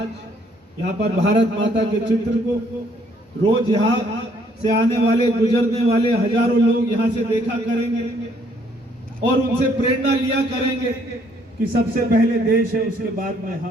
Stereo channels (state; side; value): normal; both; correlation 0.65